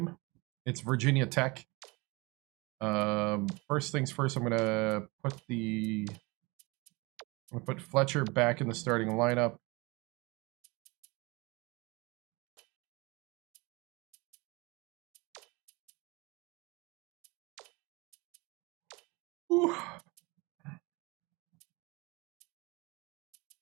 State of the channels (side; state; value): left; quieter; 25.5 dB